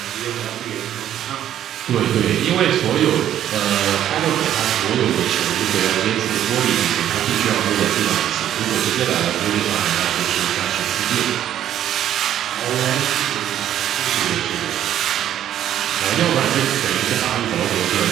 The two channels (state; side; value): quieter; left; 11.1 dB